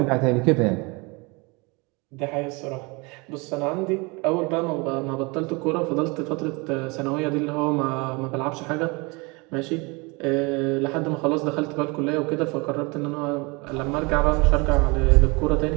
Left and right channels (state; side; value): quieter; left; 27.7 dB